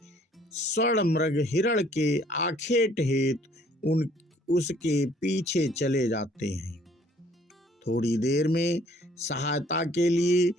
स्वर्ण मृग हिरण के आखेट हेतु उसके पीछे चले जाते हैं। थोड़ी देर में सहायता के लिए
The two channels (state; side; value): normal; both; correlation 0.60